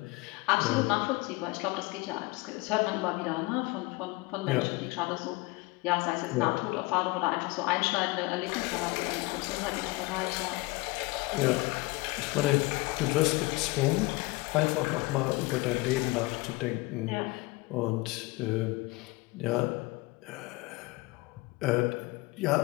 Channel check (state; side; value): quieter; right; 23.0 dB